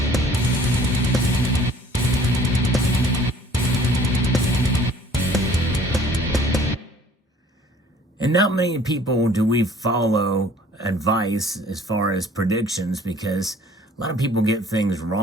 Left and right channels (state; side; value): normal; both; correlation 0.54